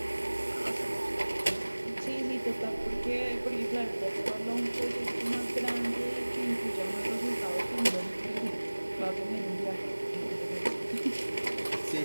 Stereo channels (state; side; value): inverted; both; correlation -1.00